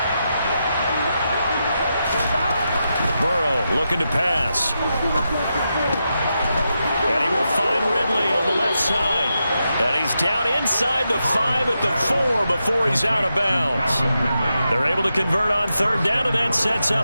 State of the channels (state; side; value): inverted; both; correlation -0.87